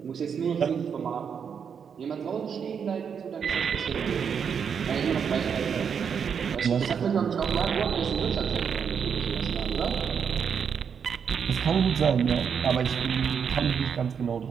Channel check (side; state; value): left; quieter; 7.0 dB